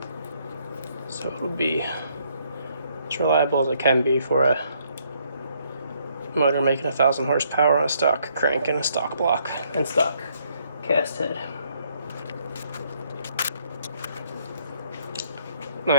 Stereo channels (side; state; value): both; inverted; correlation -0.69